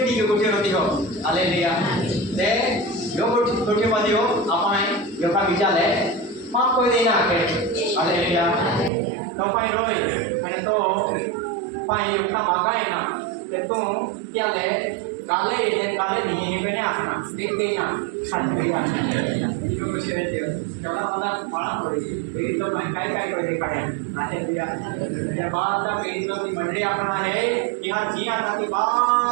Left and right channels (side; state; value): left; drops out; at 8.9 s